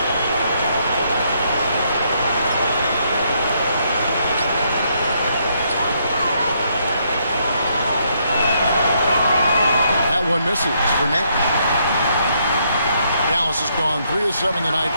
One misses for Nash. Dallas has gone 3 of 7 tonight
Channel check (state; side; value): inverted; both; correlation -0.73